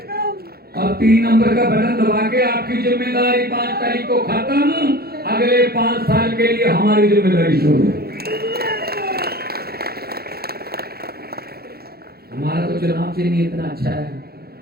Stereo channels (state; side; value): late; left; 0.45 ms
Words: और 3 नंबर का बटन दबा के आपकी जिम्मेदारी 5 तारीख को खत्म, अगले 5 साल के लिए हमारी जिम्मेदारी शुरू। हमारा तो चुनाव चिन्ह इतना अच्छा है,